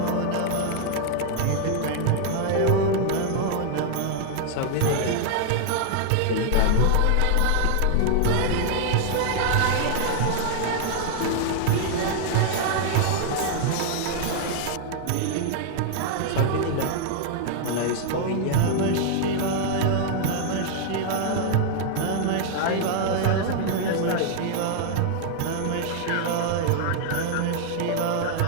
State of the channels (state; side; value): different; both; correlation 0.00